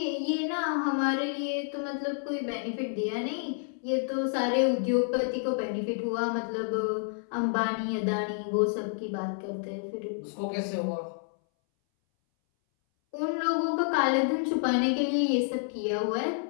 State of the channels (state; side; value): silent; right; 58 dB below the other